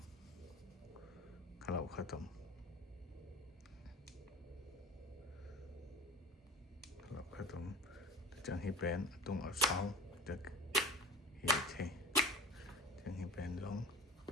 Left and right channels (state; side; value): normal; both; correlation 0.35